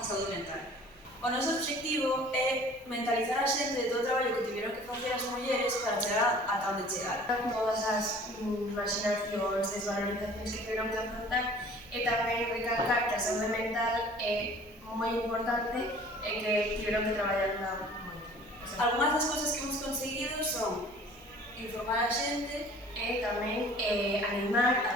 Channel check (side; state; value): both; normal; correlation 0.49